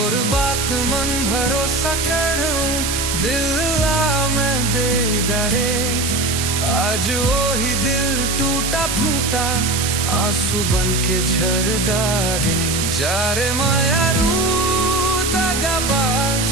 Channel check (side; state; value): right; noise; hiss, 1 dB below the sound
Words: बात मन भरोसा करूं दिल ला मैं दे डारे आज वो ही दिल टूटा फूटा आंसू बन के झरदारे जा रे मायारू दगाबाज